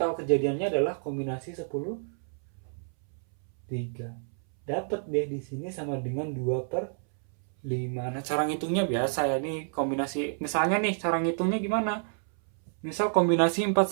kejadiannya adalah kombinasi 10 3. Dapat deh di sini sama dengan 2/5. Nah, cara ngitungnya biasa ya. Ini kombinasi, misalnya nih cara ngitungnya gimana? Misal kombinasi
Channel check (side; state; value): left; silent; 58 dB below the other